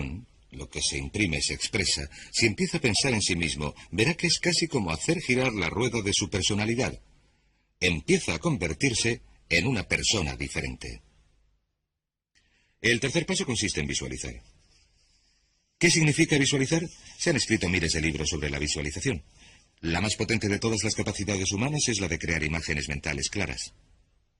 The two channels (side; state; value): both; identical; correlation 1.00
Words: lo que se imprime se expresa. Si empieza a pensar en sí mismo, verá que es casi como hacer girar la rueda de su personalidad. Empieza a convertirse en una persona diferente. El tercer paso consiste en visualizar. ¿Qué significa visualizar? Se han escrito miles de libros sobre la visualización. La más potente de todas las capacidades humanas es la de crear imágenes mentales claras.